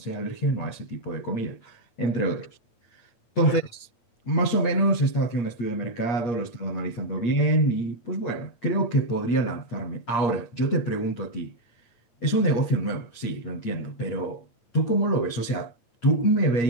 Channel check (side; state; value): right; late; 8.5 ms